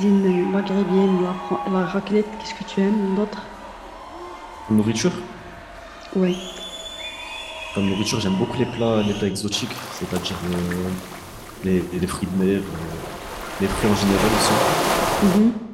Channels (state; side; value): identical; both; correlation 1.00